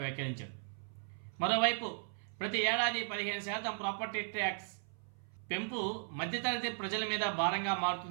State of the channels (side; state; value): left; silent; 53 dB below the other